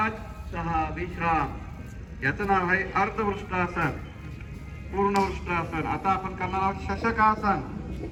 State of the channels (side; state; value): both; identical; correlation 1.00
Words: 6. विश्राम. याचं नाव आहे अर्धवृष्टासन. पूर्ण वृष्टासन. आता आपण करणार आहोत शशकासन.